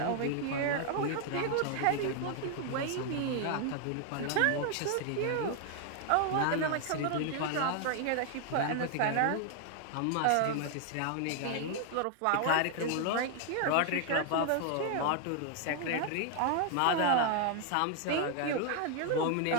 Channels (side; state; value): both; different; correlation 0.00